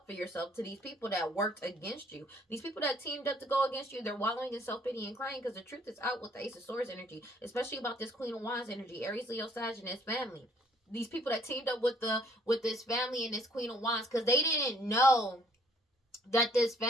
for yourself to these people that worked against you. These people that teamed up to go against you, they're wallowing in self-pity and crying because the truth is out with the Ace of Swords energy, especially about this Queen of Wands energy, Aries, Leo, Sag, and his family. These people that teamed up with this family and this Queen of Wands, because they didn't know that this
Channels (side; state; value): both; normal; correlation 0.62